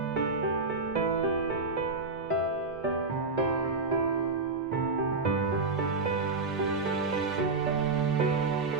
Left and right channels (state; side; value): quieter; left; 3.8 dB